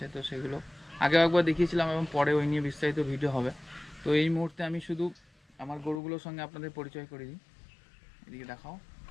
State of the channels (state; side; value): drops out; right; at 6.0 s